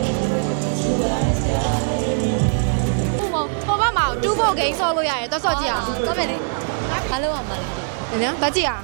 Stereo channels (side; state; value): left; silent; digital silence